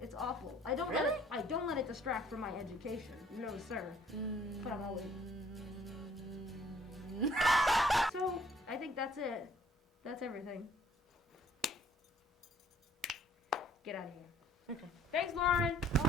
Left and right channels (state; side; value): normal; both; correlation 0.59